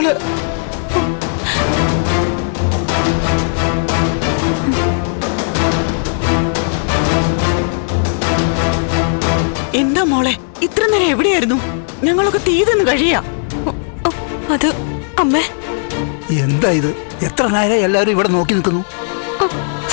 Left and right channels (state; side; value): silent; right; digital silence